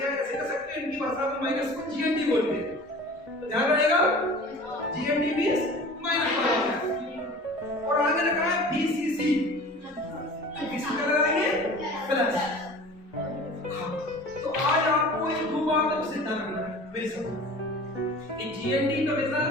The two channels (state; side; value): normal; both; correlation 0.41